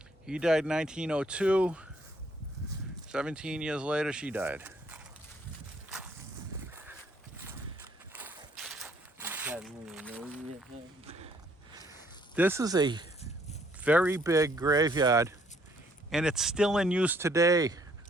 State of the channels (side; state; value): both; normal; correlation 0.65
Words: He died in 1902. 17 years later, she died. This is a very big graveyard, and it's still in use today,